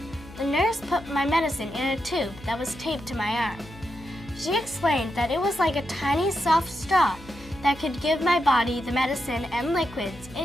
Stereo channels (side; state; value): left; noise; hum, 19 dB below the sound